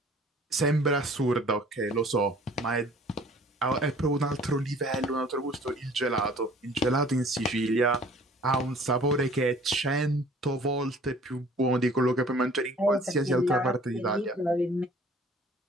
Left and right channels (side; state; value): both; normal; correlation 0.52